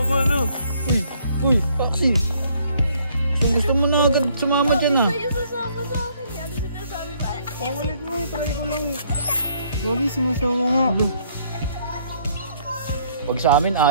ano? Uy, Axie! Gusto mo na agad sumama dyan ah. Kayo sasama sa akin, di ano sinasabi ba? Ang ulit mo eh. Try ko lang eh. Gagi, sumasama nga. Pag sa amin,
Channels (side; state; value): both; inverted; correlation -0.65